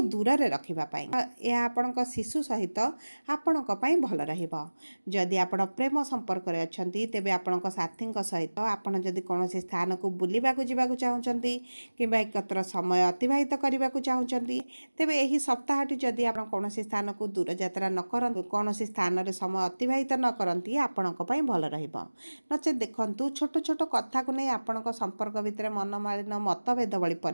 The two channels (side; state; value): both; inverted; correlation -1.00